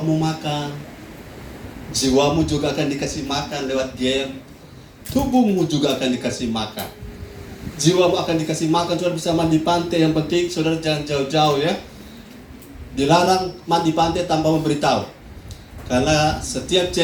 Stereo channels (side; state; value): both; identical; correlation 1.00